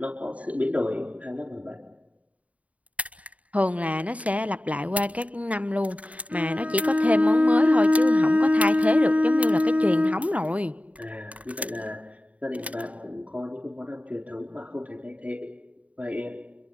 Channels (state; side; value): late; left; 0.068 ms